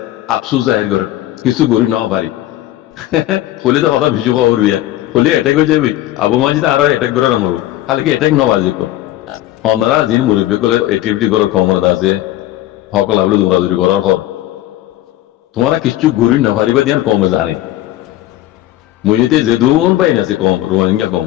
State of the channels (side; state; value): right; quieter; 14.6 dB